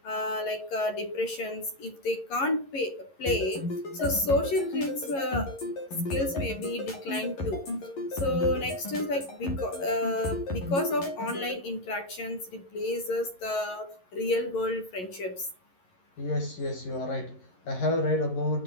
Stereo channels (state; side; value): late; right; 11 ms